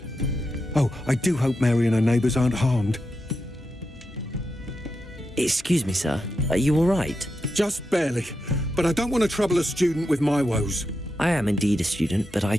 Oh, I do hope Mary and her neighbours aren't harmed. Excuse me, sir. Are you all right? Just barely. But I don't want to trouble a student with my woes. I am indeed a student, but I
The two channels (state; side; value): normal; both; correlation 0.87